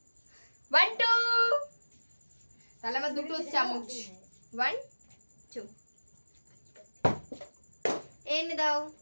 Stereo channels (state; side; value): inverted; both; correlation -1.00